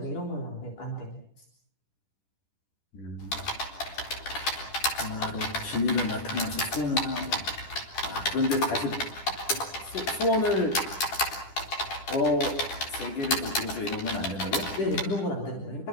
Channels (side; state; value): right; late; 10 ms